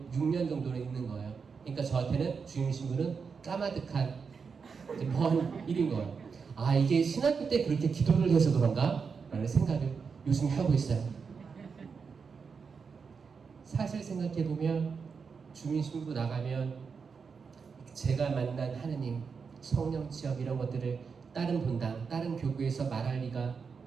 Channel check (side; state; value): left; quieter; 5.6 dB